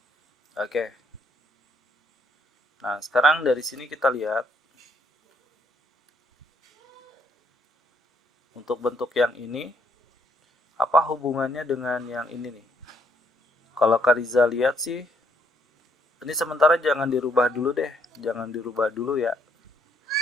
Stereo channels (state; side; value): normal; both; correlation 0.69